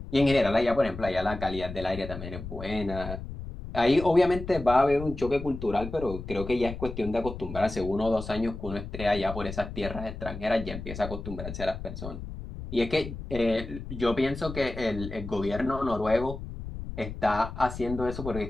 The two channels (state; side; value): noise; left; rumble, 9 dB below the sound